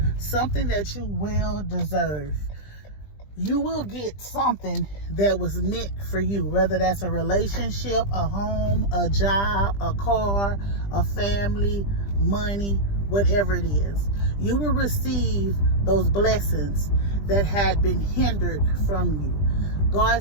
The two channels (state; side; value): late; right; 20 ms